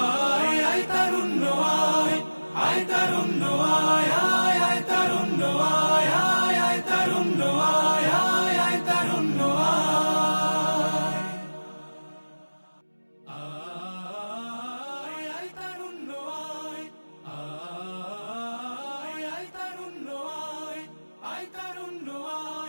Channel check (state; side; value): inverted; both; correlation -1.00